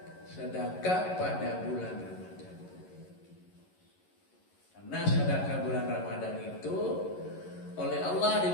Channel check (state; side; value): late; right; 11 ms